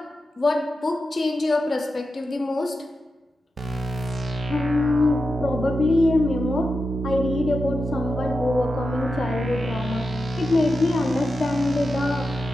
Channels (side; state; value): both; normal; correlation 0.90